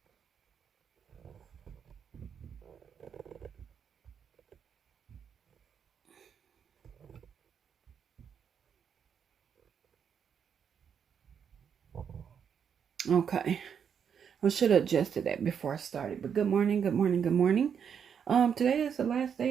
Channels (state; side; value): quieter; left; 7.5 dB